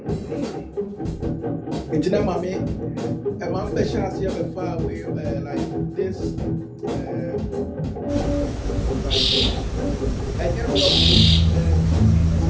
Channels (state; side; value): identical; both; correlation 1.00